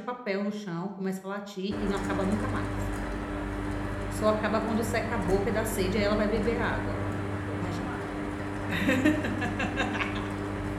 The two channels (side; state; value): both; identical; correlation 1.00